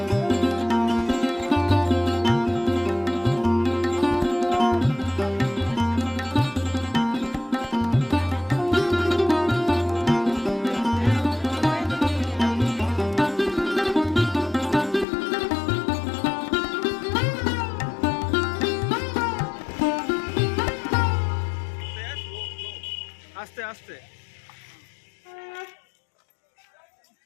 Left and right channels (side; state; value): right; drops out; at 15.1 s